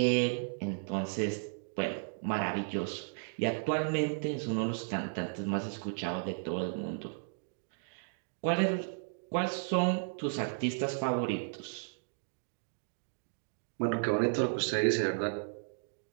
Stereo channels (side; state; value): left; silent; digital silence